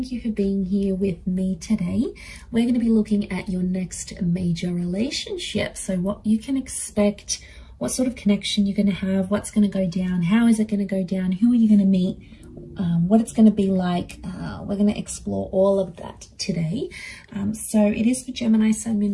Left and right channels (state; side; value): identical; both; correlation 1.00